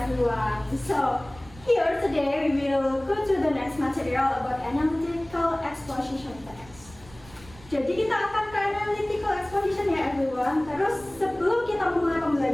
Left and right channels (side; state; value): right; noise; rumble, 21 dB below the sound